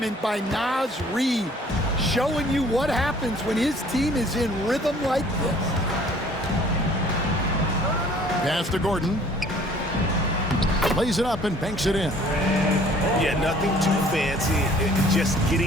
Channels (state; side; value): normal; both; correlation 0.55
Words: by Naz Reid, showing you what happens when his team is in rhythm like this. Pass to Gordon. Lays it up and banks it in. Yeah, nothing too fancy. Just